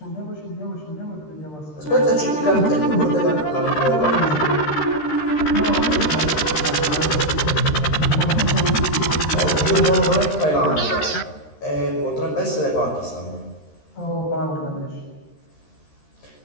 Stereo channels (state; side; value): late; right; 13 ms